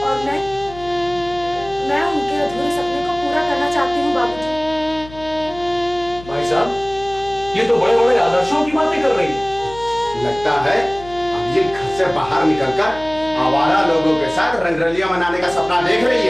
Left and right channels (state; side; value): noise; left; hum, 17 dB below the sound